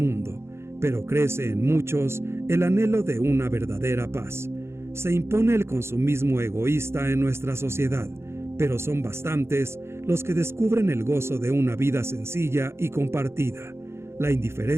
pero crece en muchos el anhelo de una verdadera paz. Se impone el consumismo egoísta en nuestra sociedad, pero son bastantes los que descubren el gozo de una vida sencilla y compartida. La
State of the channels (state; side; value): late; left; 0.12 ms